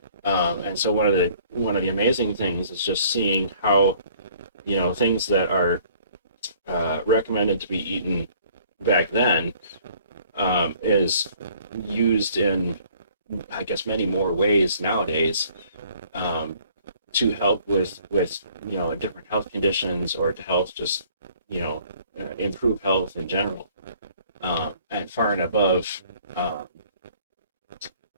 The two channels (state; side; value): inverted; both; correlation -0.57